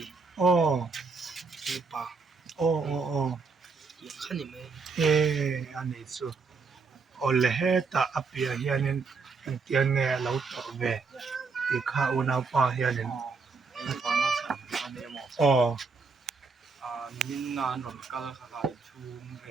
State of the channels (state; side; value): quieter; left; 4.7 dB